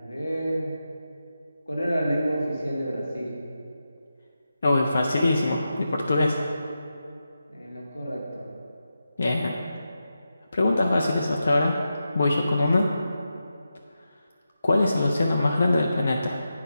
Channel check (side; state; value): both; inverted; correlation -0.89